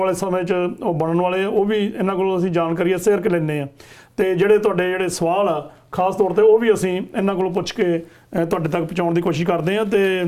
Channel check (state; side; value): identical; both; correlation 1.00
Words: ਸਮੇਂ 'ਚ ਉਹ ਬਣਨ ਵਾਲੇ ਆ, ਉਹ ਵੀ ਇਹਨਾਂ ਕੋਲੋਂ ਅਸੀਂ ਜਾਣਕਾਰੀ ਸ਼ੇਅਰ ਕਰ ਲੈਂਦੇ ਹਾਂ। ਤੇ ਜਿਹੜੇ ਤੁਹਾਡੇ ਜਿਹੜੇ ਸਵਾਲ ਆ ਖਾਸ ਤੌਰ ਤੇ ਉਹ ਵੀ ਅਸੀਂ ਇਹਨਾਂ ਕੋਲੋਂ ਪੁੱਛ ਕੇ ਤੁਹਾਡੇ ਤੱਕ ਪਹੁੰਚਾਉਣ ਦੀ ਕੋਸ਼ਿਸ਼ ਕਰਦੇ ਹਾਂ। ਤੇ